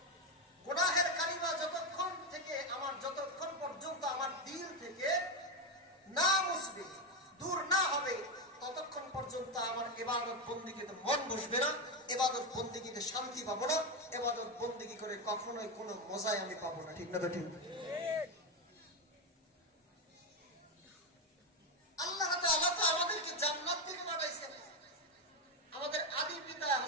গুনাহের কালিমা যতক্ষণ পর্যন্ত আমার দিল থেকে না মুছবে, দূর না হবে, ততক্ষণ পর্যন্ত আমার ইবাদত বন্দেগীতে মন বসবে না, ইবাদত বন্দেগীতে শান্তি পাবো না, ইবাদত বন্দেগী করে কখনোই কোনো মজাই আমি পাবো না। ঠিক না? তো ঠিক। আল্লাহ তাআলা তো আমাদেরকে জান্নাত থেকে পাঠাইছেন। আমাদের আদি পিতা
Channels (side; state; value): both; normal; correlation 0.10